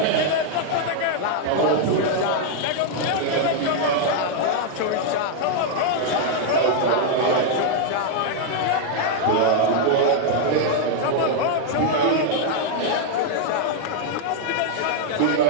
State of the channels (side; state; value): both; different; correlation 0.00